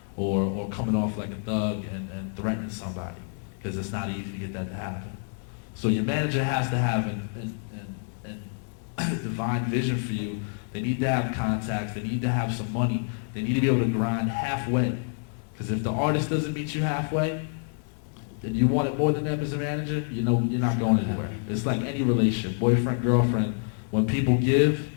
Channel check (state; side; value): silent; right; 60 dB below the other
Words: or coming off like a thug and threatening somebody, because it's not easy to get that to happen. So your manager has to have a divine vision for you. They need to have contacts. They need to have some money. They need to be able to grind halfway. Because if the artist doesn't meet you halfway, and you want it more than them as a manager, you know you're not going anywhere. It's like any relationship, boyfriend, girlfriend. When people give,